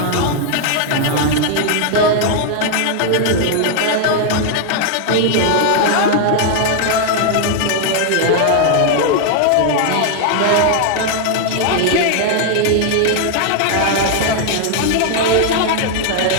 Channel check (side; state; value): both; different; correlation 0.00